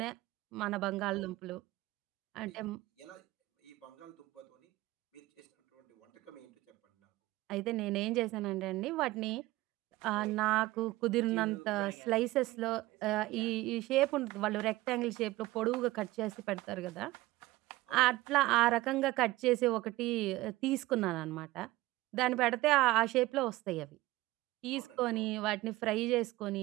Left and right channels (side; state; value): left; quieter; 18.3 dB